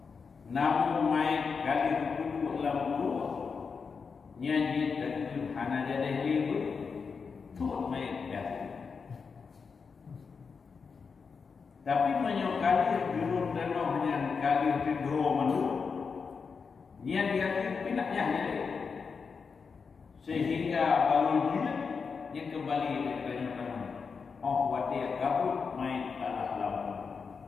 Namun main kali kudu lam guru. Nyanyi terjun hana jadi libu. Tuh main kali. Tapi menyokali gerung dano yang kali tidro manu. Niat dia pinaknya ini sehingga baru dia kembali kepada tangan. Oh, watia kabut main alah lawan.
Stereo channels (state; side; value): quieter; right; 5.4 dB